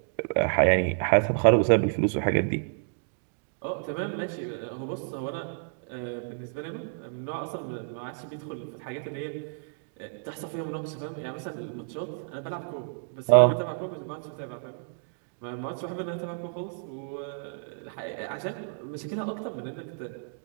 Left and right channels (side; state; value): left; silent; digital silence